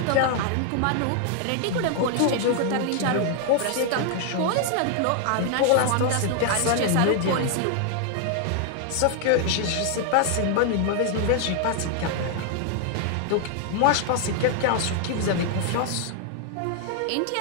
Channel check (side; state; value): both; different; correlation 0.00